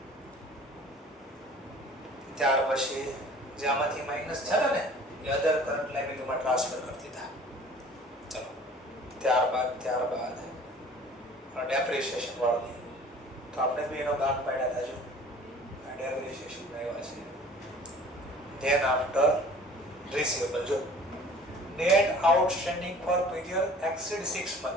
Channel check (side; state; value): both; normal; correlation 0.48